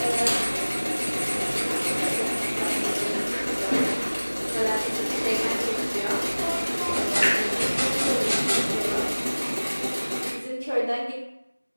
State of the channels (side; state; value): both; inverted; correlation -1.00